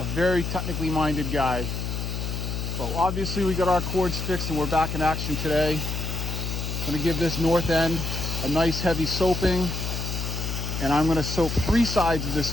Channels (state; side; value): noise; left; hum, 3 dB below the sound